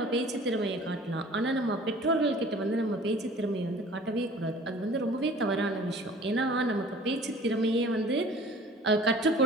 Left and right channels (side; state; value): both; normal; correlation 0.48